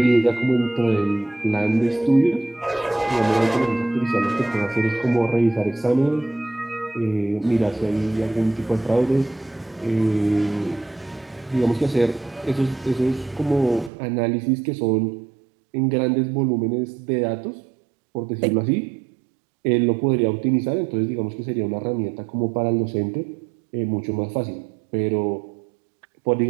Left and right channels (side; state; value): left; drops out; at 13.9 s